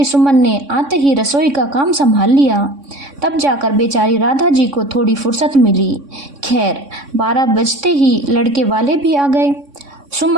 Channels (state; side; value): late; left; 3.6 ms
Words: सुमन ने आते ही रसोई का काम संभाल लिया, तब जाकर बेचारी राधा जी को थोड़ी फुर्सत मिली। खैर 12 बजते ही लड़के वाले भी आ गए।